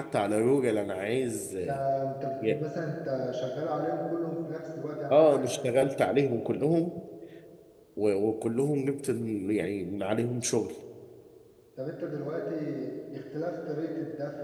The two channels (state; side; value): identical; both; correlation 1.00